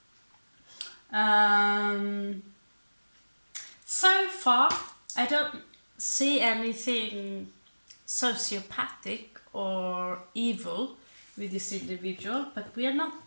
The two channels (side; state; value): both; inverted; correlation -1.00